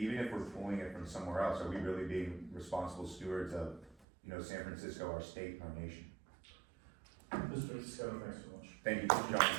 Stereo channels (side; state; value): left; drops out; at 4.0 s